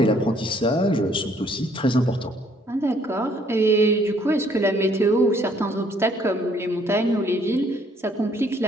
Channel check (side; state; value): both; normal; correlation 0.64